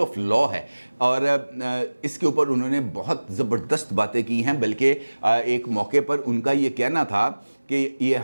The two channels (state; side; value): inverted; both; correlation -1.00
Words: آف لا ہے، اور اس کے اوپر انہوں نے بہت زبردست باتیں کی ہیں۔ بلکہ ایک موقع پر ان کا یہ کہنا تھا کہ یہ